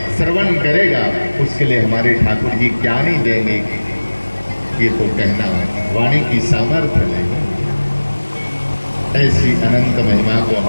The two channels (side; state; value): both; inverted; correlation -1.00